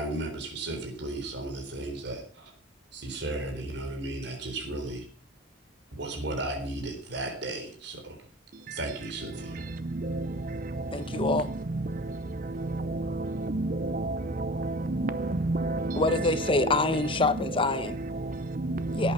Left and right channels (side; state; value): both; normal; correlation 0.39